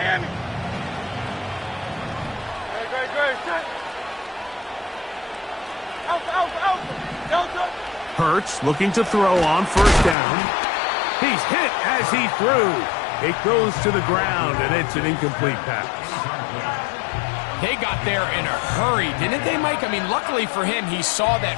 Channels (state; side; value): drops out; right; at 10.2 s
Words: Great. Alpha. Delta. Hurts looking to throw on first down. He's hit as he threw. It goes to the ground, and it's an incomplete pass. They got there in a hurry, didn't they, Mike? I mean, luckily for him, he saw